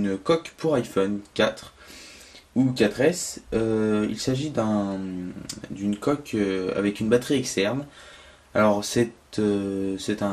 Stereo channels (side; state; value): both; identical; correlation 1.00